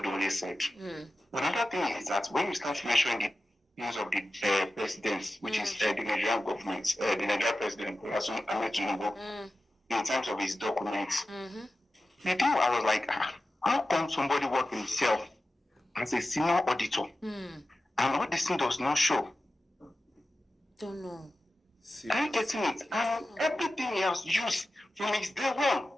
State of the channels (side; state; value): both; normal; correlation 0.94